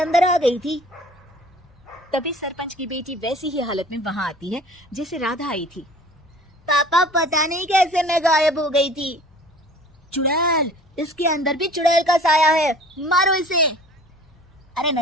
आ गई थी। तभी सरपंच की बेटी वैसी ही हालत में वहां आती है जैसे राधा आई थी। पापा, पता नहीं कैसे मैं गायब हो गई थी। चुड़ैल, इसके अंदर भी चुड़ैल का साया है, मारो इसे। अरे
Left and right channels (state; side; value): normal; both; correlation 0.47